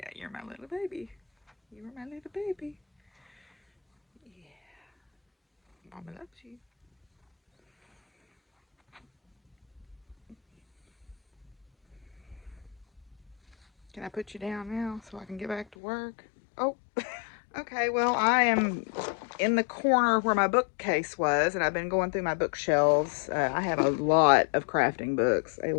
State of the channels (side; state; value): right; drops out; at 15.7 s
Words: you're my little baby. You were my little baby. Yeah. Mama loves you. Can I put you down now so I can get back to work? Oh, okay. Well, I am in the corner where my bookcase was, and I've been going through my bookshelves. I have a lot of crafting books. A